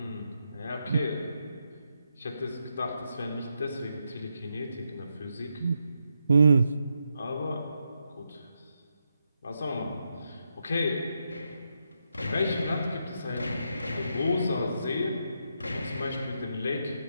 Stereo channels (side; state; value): both; inverted; correlation -0.83